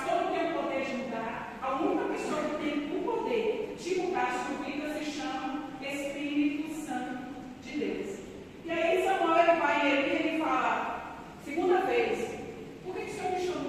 não tem o poder de mudar. A única pessoa que tem o poder de mudar a sua vida se chama Espírito Santo de Deus. E aí Samuel ele vai e ele fala, segunda vez, por que o Senhor me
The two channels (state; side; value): identical; both; correlation 1.00